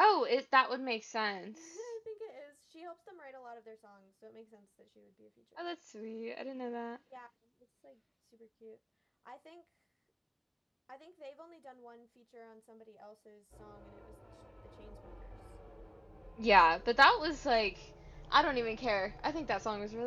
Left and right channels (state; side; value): identical; both; correlation 1.00